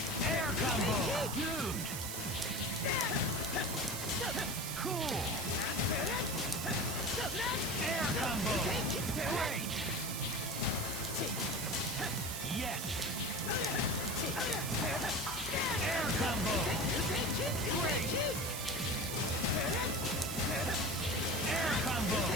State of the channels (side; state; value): right; noise; hiss, 5 dB below the sound